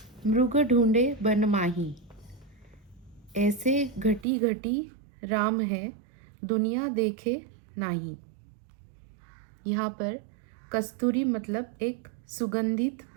मृग ढूंढे बन माही, ऐसे घटी घटी राम है दुनिया देखे नाही। यहाँ पर कस्तूरी मतलब एक सुगंधित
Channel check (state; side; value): drops out; left; at 4.2 s